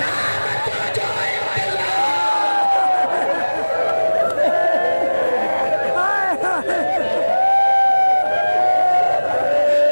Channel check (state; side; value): inverted; both; correlation -1.00